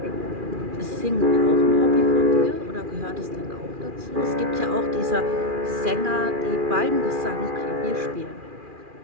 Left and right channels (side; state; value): left; late; 2.4 ms